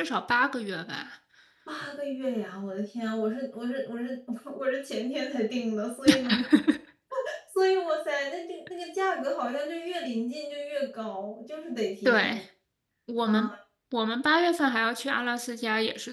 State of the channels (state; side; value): identical; both; correlation 1.00